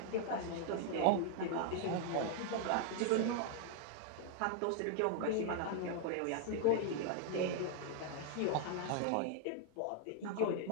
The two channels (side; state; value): both; different; correlation 0.00